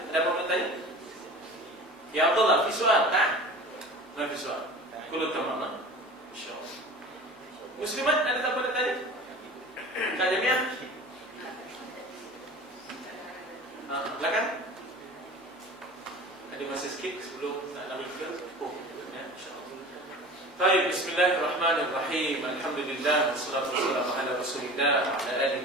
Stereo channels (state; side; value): normal; both; correlation 0.38